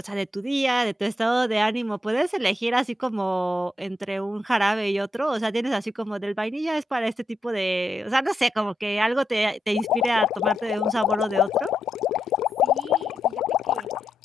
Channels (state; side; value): normal; both; correlation 0.83